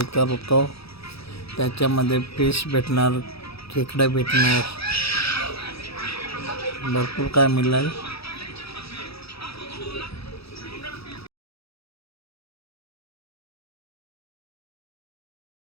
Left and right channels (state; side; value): late; right; 0.77 ms